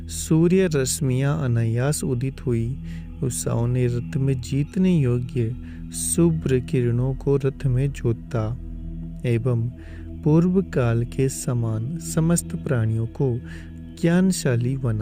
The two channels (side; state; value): both; identical; correlation 1.00